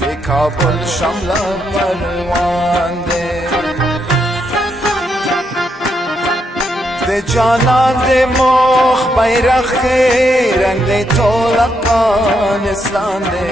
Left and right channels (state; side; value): normal; both; correlation 0.78